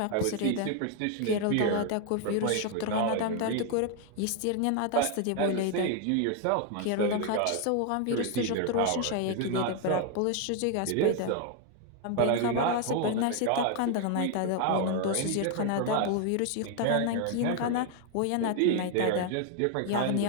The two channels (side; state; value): both; different; correlation 0.01